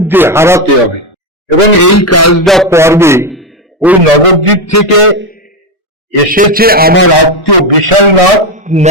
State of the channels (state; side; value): normal; both; correlation 0.10